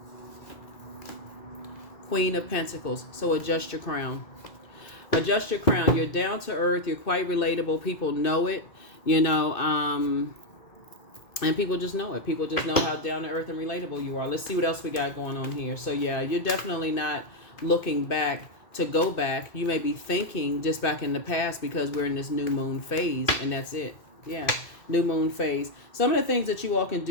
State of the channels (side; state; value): right; late; 2.6 ms